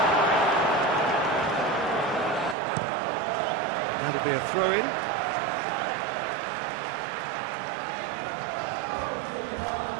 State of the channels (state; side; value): drops out; left; at 2.6 s